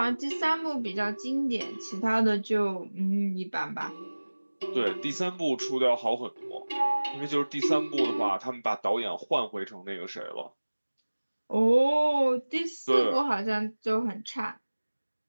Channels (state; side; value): inverted; both; correlation -1.00